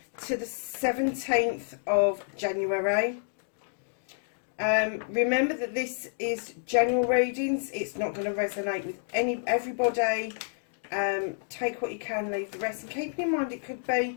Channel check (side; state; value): right; silent; digital silence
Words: to the 17th of January. Remember that this is general readings. It's not going to resonate with everybody. Take what you can, leave the rest, and keep in mind it could